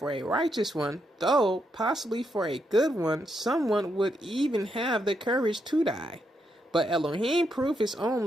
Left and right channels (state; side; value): normal; both; correlation 0.80